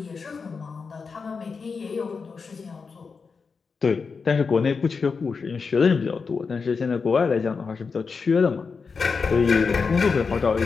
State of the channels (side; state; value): right; quieter; 5.1 dB